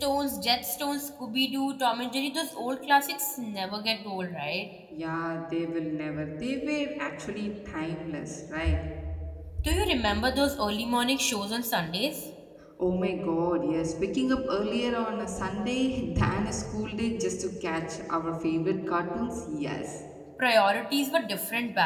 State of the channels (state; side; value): identical; both; correlation 1.00